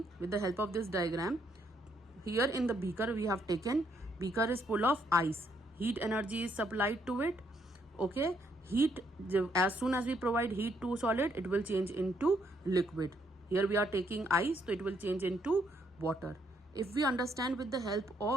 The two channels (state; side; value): normal; both; correlation 0.72